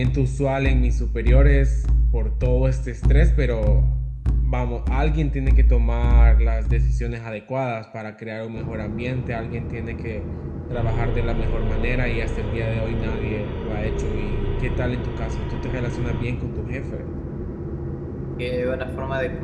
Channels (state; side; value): identical; both; correlation 1.00